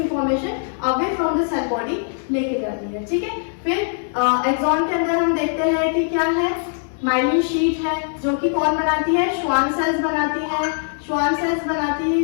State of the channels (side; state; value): right; silent; 65 dB below the other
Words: away from the cell body लेके जाती है। ठीक है, फिर एक्सॉन के अंदर हम देखते हैं कि क्या है, माइलिन शीट है, जो कि कौन बनाती है, श्वान सेल्स बनाती है। श्वान सेल्स बनाती